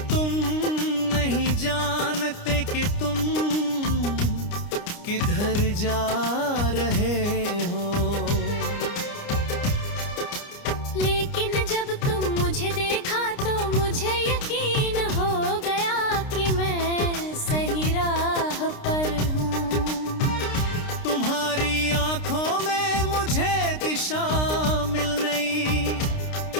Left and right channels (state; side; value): late; right; 29 ms